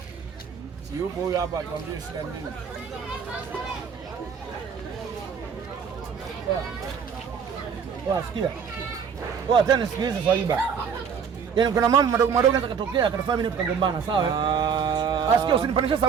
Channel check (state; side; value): quieter; left; 6.7 dB